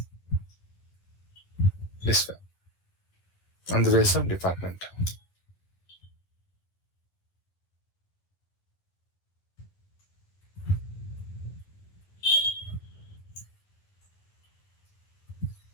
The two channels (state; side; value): late; right; 10 ms